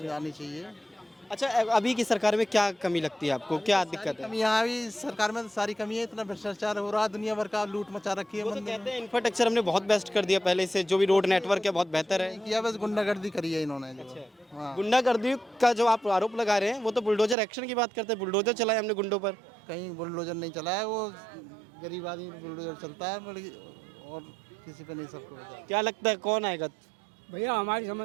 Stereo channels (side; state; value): left; drops out; at 17.4 s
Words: आनी चाहिए। अच्छा, अभी की सरकार में क्या कमी लगती है आपको, क्या दिक्कत है? कमी यहाँ भी सरकार में तो सारी कमी है, इतना भ्रष्टाचार हो रहा है, दुनिया भर का लूट मचा रखी है। वो तो कहते हैं इंफ्रास्ट्रक्चर हमने बहुत बेस्ट कर दिया पहले से, जो भी रोड नेटवर्क है बहुत बेहतर है। किया, बस गुंडागर्दी करी है इन्होंने जो। हाँ, गुंडागर्दी का जो आप आरोप लगा रहे हैं वो तो बुलडोजर एक्शन की बात करते हैं, बुलडोजर चलाया हमने गुंडों पर। कहीं बुलडोजर नहीं चला है, वो गरीब आदमी बुलडोजर चलता है और किसी पे नहीं, सबको होता है। क्या लगता है कौन आएगा? भैया हमारी